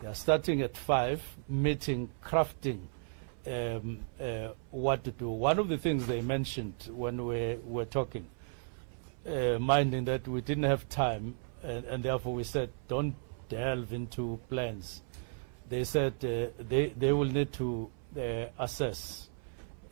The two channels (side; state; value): left; silent; 55 dB below the other